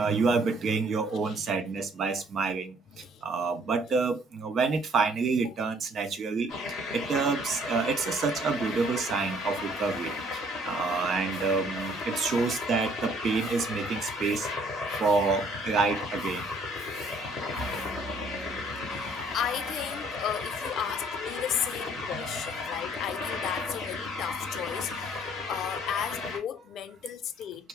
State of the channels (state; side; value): normal; both; correlation 0.61